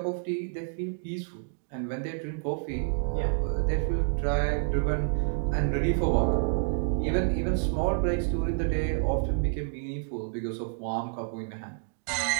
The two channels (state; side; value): silent; left; digital silence